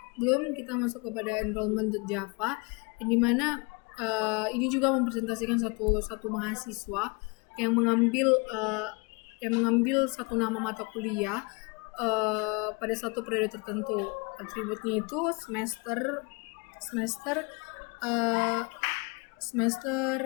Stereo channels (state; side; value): quieter; right; 30.0 dB